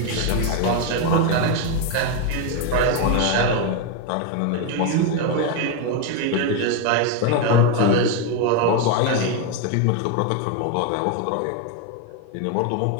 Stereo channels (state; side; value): different; both; correlation 0.02